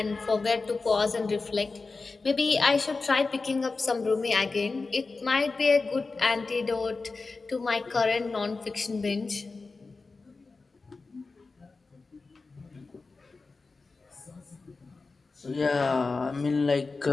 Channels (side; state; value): right; quieter; 4.0 dB